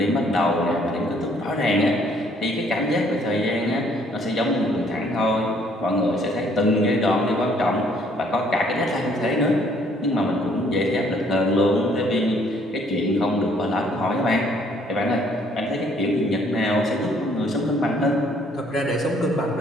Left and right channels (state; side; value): normal; both; correlation 0.63